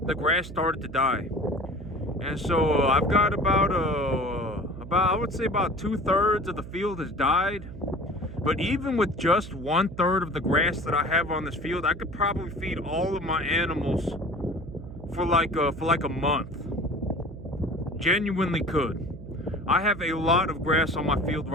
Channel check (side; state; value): right; noise; hum, 12 dB below the sound